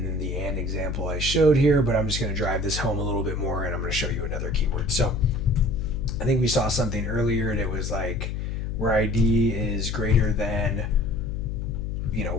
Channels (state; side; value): noise; left; hum, 3 dB below the sound